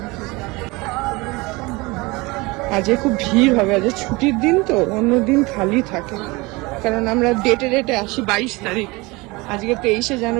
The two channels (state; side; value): quieter; left; 23.9 dB